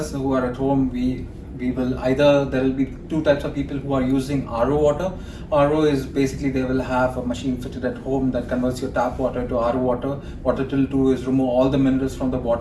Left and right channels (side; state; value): both; identical; correlation 1.00